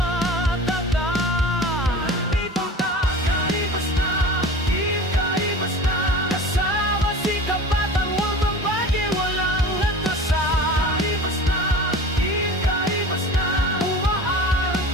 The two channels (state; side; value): normal; both; correlation 0.38